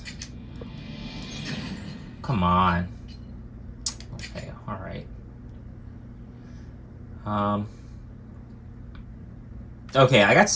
Come on. Okay, all right. Okay, I got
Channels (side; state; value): both; identical; correlation 1.00